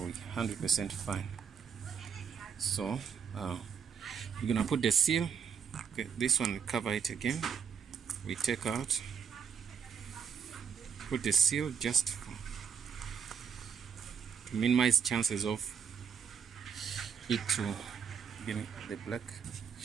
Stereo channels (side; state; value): left; quieter; 7.0 dB